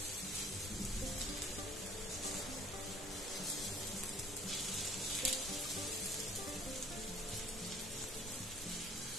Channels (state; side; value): normal; both; correlation 0.54